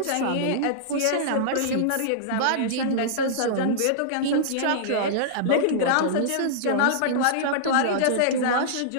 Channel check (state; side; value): different; both; correlation -0.02